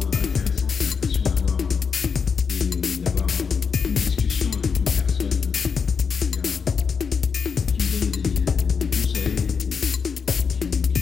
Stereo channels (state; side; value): quieter; right; 5.9 dB